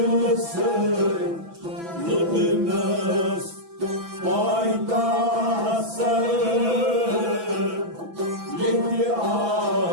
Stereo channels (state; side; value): late; left; 6.0 ms